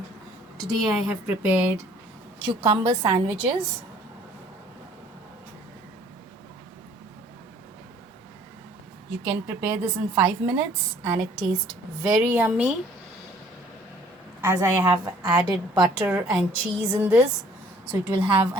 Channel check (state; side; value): normal; both; correlation 0.57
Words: Today I have prepared cucumber sandwiches. You can prepare this in 5 minutes and it tastes very yummy as I have added butter and cheese in this. So it will have a